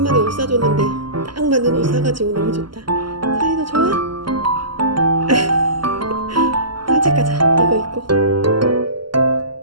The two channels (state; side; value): late; left; 0.72 ms